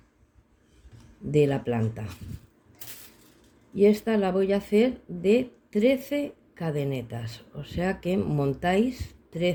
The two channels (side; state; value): both; identical; correlation 1.00